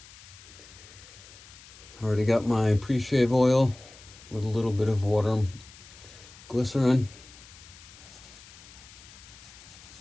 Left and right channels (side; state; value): left; noise; hiss, 20 dB below the sound